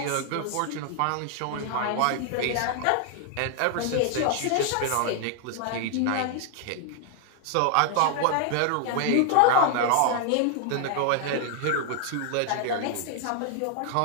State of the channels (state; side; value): different; both; correlation 0.00